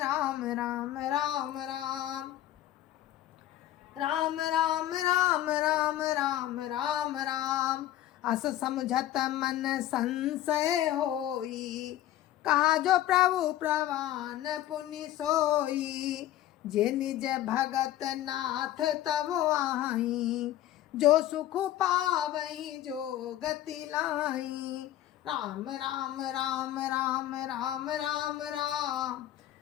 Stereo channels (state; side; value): quieter; right; 13.3 dB